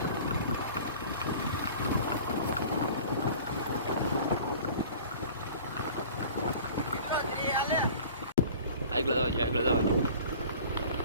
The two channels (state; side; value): inverted; both; correlation -0.44